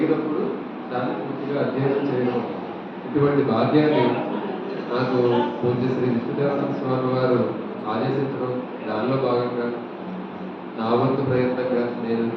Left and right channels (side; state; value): both; identical; correlation 1.00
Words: దాన్ని పూర్తిగా అధ్యయనం చేయడం. ఇటువంటి భాగ్యాన్ని నాకు పూజ్య శ్రీ విష్ణుదేవానంద స్వామి వారు ఆదేశించడం, దానిలో భాగంగా నా వంతు ప్రయత్నంగా నేను